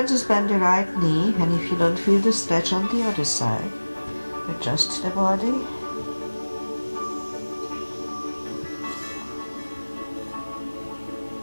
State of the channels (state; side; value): inverted; both; correlation -1.00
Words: just bend the right knee, and if you don't feel the stretch on the other side, adjust the body.